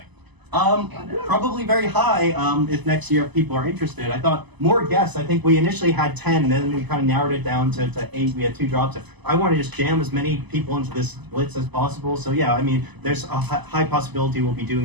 Probably very high if next year people are interested. I thought more guests. I think we initially had 10, and then we kind of narrowed it down to 8. We had 2 drops. I want to just jam as many people into this Blitz as possible. So yeah, I mean, there's a high possibility we'll be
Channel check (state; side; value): late; left; 1.0 ms